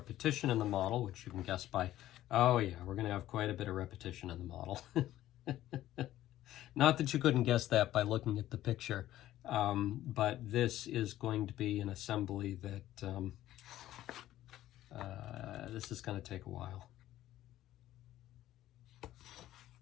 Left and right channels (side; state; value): right; quieter; 13.9 dB